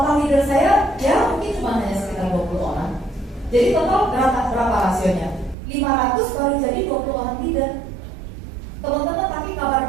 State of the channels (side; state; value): left; drops out; at 5.6 s